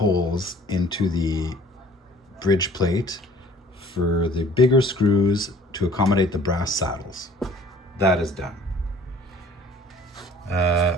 into the bridge plate for the bigger screws to accommodate the brass saddles. That is done.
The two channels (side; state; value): both; normal; correlation 0.52